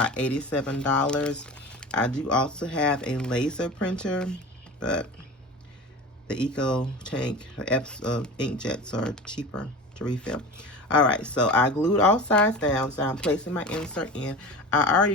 $87. I do also have a laser printer, but the Eco Tank inkjets are cheaper to refill. All right, so I glued all sides down, so I'm placing my insert in. I already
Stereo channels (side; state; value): both; normal; correlation 0.33